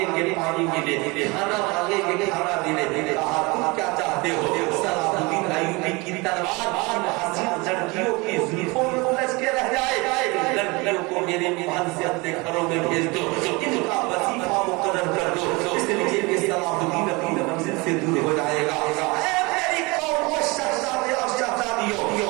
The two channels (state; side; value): quieter; left; 25.7 dB